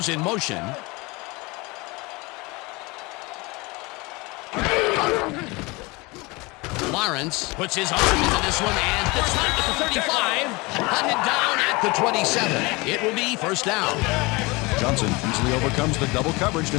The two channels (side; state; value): right; quieter; 24.9 dB